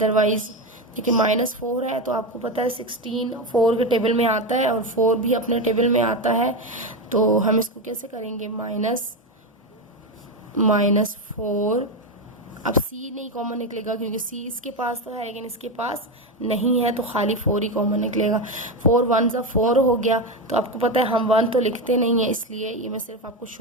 देखिए -4 है तो आपको पता है 16 4 के टेबल में आता है और 4 भी अपने टेबल में आता है, तो हम इसको कैसे करेंगे, -4। अब c नहीं कॉमन निकलेगा क्योंकि c इसके पास तो है लेकिन इसके पास नहीं है, तो खाली 4 ही कॉमन निकलेगा। 4 1 ज़ा 4 हो गया, तो आपको पता है हम 1 तो लिखते नहीं है, इसलिए ये मैं सिर्फ आपको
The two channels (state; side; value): normal; both; correlation 0.14